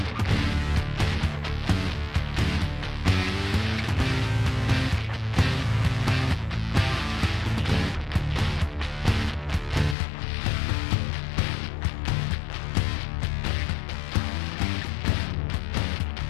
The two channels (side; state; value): right; drops out; at 10.0 s